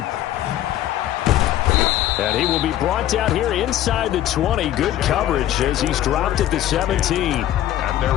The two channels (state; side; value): quieter; right; 12.8 dB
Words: And he will be brought down here inside the 20. Good coverage as he's dropped at the 17. At their